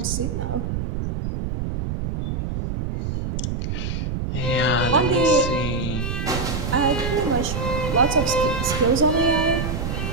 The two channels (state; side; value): noise; right; rumble, 3 dB below the sound